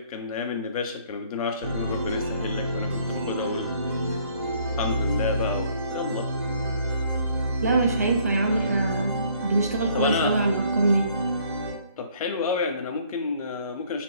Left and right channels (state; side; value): inverted; both; correlation -0.61